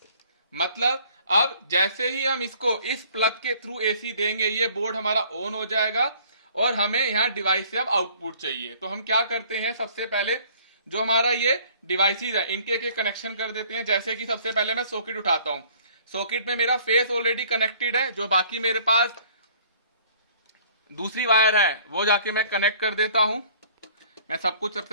मतलब अब जैसे ही हम इसको इस प्लग के थ्रू एसी देंगे, ये बोर्ड हमारा ऑन हो जाएगा, और हमें यहाँ डिवाइस से अब आउटपुट चाहिए। तो हम क्या करते हैं, सबसे पहले जो हमारा ये डिवाइसेस है इनके एक कनेक्शन कर देते हैं। जैसे कि सबसे पहले मैं सॉकेट उठाता हूं, सॉकेट में मेरा फेस ऑलरेडी कनेक्टेड है, जो बाकी मेरे पास दूसरी वायर है वो जाके मैं कनेक्ट कर देता हूं। मैं सब कुछ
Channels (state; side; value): inverted; both; correlation -0.55